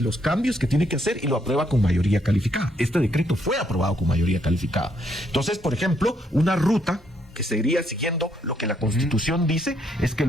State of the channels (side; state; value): both; normal; correlation 0.72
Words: cambios que tiene que hacer y lo aprueba con mayoría calificada. Este decreto fue aprobado con mayoría calificada. Entonces, por ejemplo, una ruta que sería siguiendo lo que la Constitución dice es que